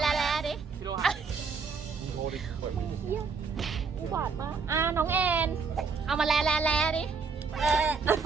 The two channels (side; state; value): left; quieter; 5.1 dB